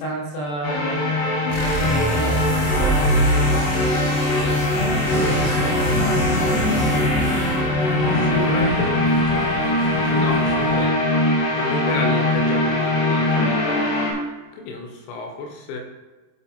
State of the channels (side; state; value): right; late; 27 ms